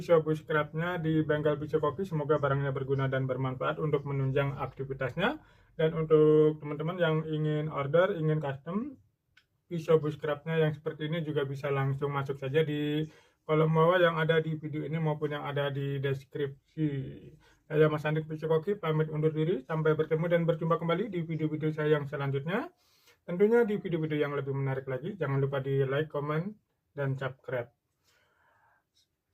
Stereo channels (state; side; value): identical; both; correlation 1.00